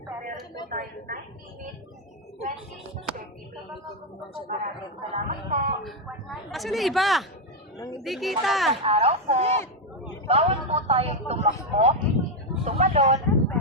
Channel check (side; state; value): both; normal; correlation 0.04